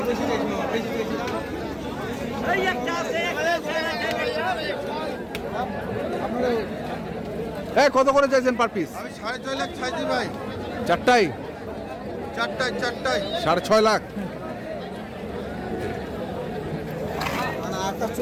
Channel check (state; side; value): identical; both; correlation 1.00